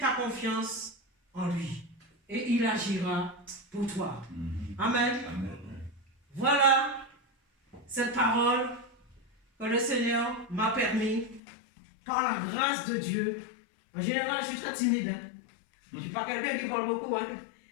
confiance en lui et il agira pour toi. Amen. Amen. Voilà cette parole que le Seigneur m'a permis, par la grâce de Dieu. En général, je suis très timide. Hein? Je ne suis pas quelqu'un qui parle beaucoup. Hein?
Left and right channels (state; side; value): drops out; right; at 11.4 s